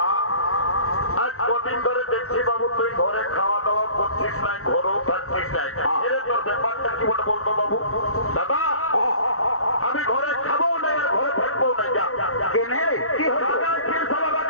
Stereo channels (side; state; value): right; late; 0.63 ms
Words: আজ কদিন ধরে দেখছি বাবু তুই ঘরে খাওয়া দাওয়া করছিস নাই, ঘরেও থাকছিস নাই। এরে তোর ব্যাপারটা কি বলে বলতো বাবু? দাদা আমি ঘরে খাবো না, আর ঘরে থাকবো না। যা কেনে কি হলো?